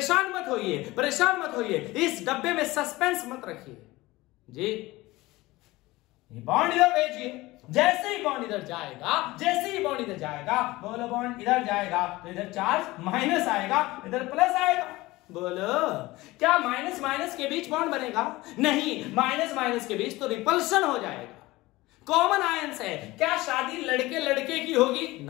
मत होइए, परेशान मत होइए, इस डब्बे में सस्पेंस मत रखिए जी। ये बॉन्ड इधर भेजिए, जैसे ही बॉन्ड इधर जाएगा, जैसे ही बॉन्ड इधर जाएगा, बोलो बॉन्ड इधर जाएगा तो इधर चार्ज माइनस आएगा, इधर प्लस आएगा। बोलो, क्या माइनस माइनस के बीच बॉन्ड बनेगा? नहीं, माइनस माइनस के बीच तो रिपल्शन हो जाएगा। कॉमन आयंस है। क्या शादी लड़के लड़के की होगी?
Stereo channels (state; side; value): quieter; right; 19.6 dB